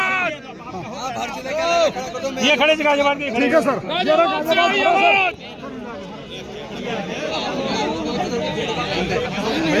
ये खड़े थे गाजियाबाद के। ठीक है सर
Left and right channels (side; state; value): both; identical; correlation 1.00